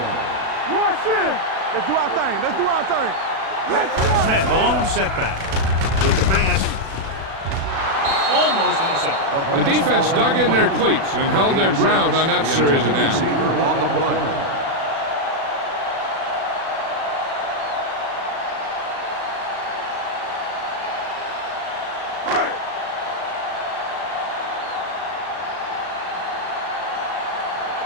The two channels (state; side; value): late; left; 36 ms